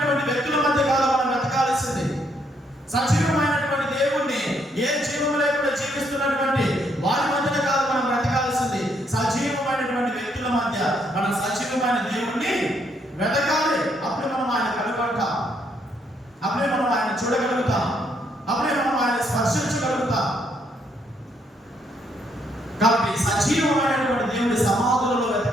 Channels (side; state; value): both; normal; correlation 0.72